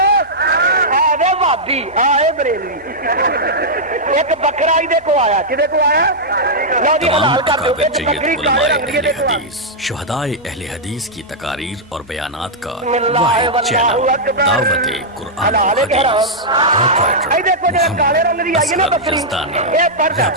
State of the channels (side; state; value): both; normal; correlation -0.08